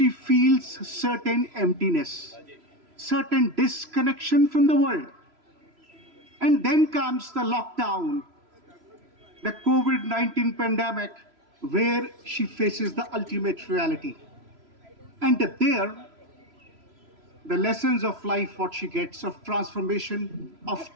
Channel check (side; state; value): left; late; 3.0 ms